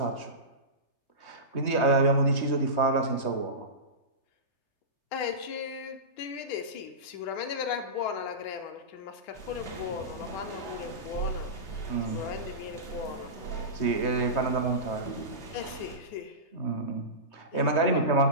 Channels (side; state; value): right; late; 3.2 ms